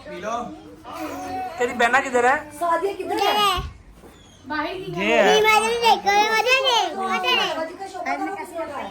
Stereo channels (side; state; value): both; identical; correlation 1.00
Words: तेरी बहना किधर है? ये है।